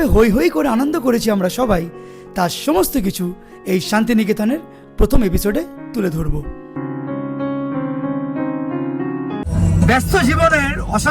হই হই করে আনন্দ করেছি আমরা সবাই, তার সমস্ত কিছু এই শান্তিনিকেতনের প্রথম এপিসোডে তুলে ধরব। ব্যস্ত জীবনের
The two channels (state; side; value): identical; both; correlation 1.00